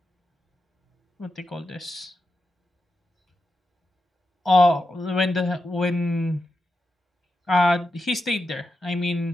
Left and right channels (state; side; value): normal; both; correlation 0.89